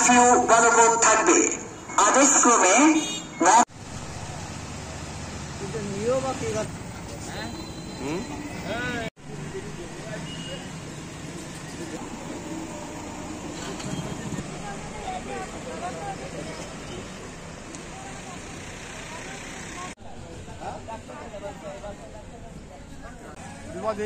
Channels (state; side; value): identical; both; correlation 1.00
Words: কারফিউ বলবৎ থাকবে। আদেশক্রমে